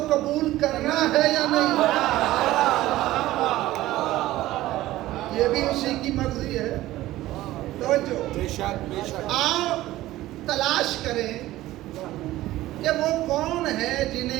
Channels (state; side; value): quieter; left; 16.0 dB